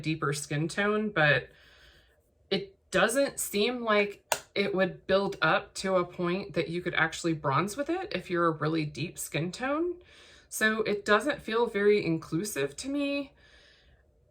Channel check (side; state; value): both; identical; correlation 1.00